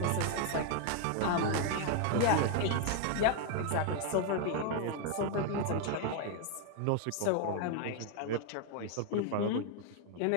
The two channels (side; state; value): both; different; correlation 0.00